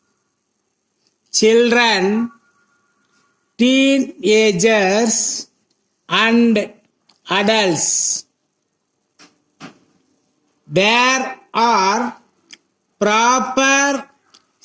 children, teenagers, and adults. There are proper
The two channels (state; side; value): identical; both; correlation 1.00